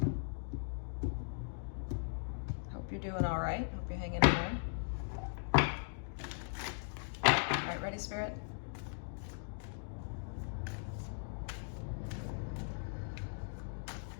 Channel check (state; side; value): silent; right; digital silence